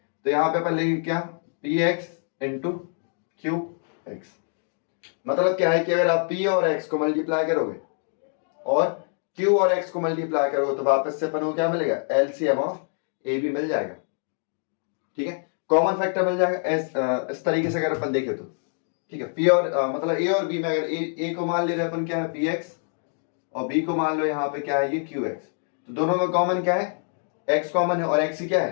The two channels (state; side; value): silent; right; 55 dB below the other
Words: यहाँ पे अपन लेंगे क्या, P x into Q x. मतलब क्या है कि अगर आप p और x को मल्टीप्लाई करोगे और q और x को मल्टीप्लाई करोगे तो वापस से अपन को क्या मिलेगा, एलसीएम ऑफ ए बी मिल जाएगा। ठीक है, कॉमन फैक्टर मिल जाएगा इस तरीके से अगर अपन देखें तो। ठीक है, p और मतलब a और b में अगर a को मान ले रहे अपन क्या है px और b को मान लो यहाँ पे क्या है ये qx, तो दोनों में कॉमन क्या है, x कॉमन है और x ही क्या